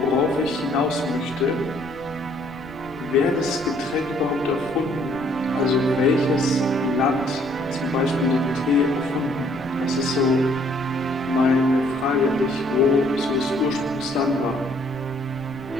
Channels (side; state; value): left; noise; rumble, 21 dB below the sound